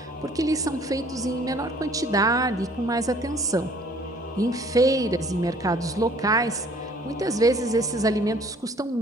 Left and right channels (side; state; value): both; normal; correlation 0.56